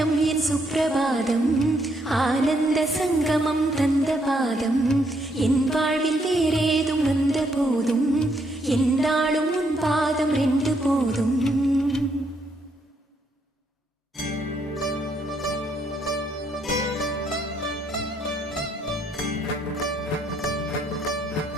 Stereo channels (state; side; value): normal; both; correlation 0.73